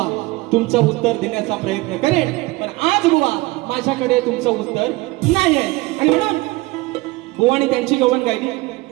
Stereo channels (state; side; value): quieter; left; 21.5 dB